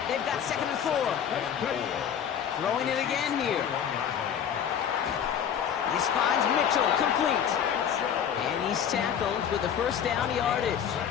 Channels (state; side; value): quieter; right; 8.6 dB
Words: they've got 2nd and 4. Throwing it again here. This finds Mitchell complete. And he's tackled with the first down yardage.